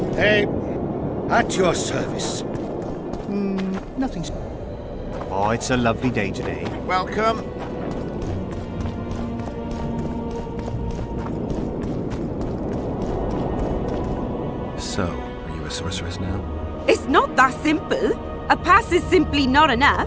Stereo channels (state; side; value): identical; both; correlation 1.00